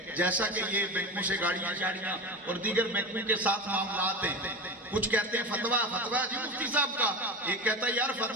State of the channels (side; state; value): both; normal; correlation 0.26